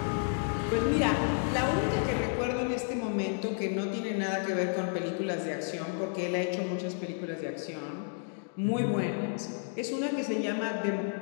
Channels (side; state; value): right; silent; 57 dB below the other